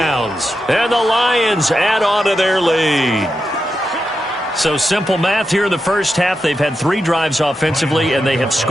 And the Lions add on to their lead. So simple math here in the first half. They've had 3 drives offensively, and they have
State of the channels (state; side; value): normal; both; correlation 0.88